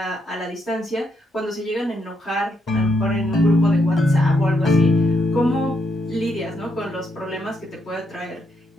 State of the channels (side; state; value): both; normal; correlation 0.78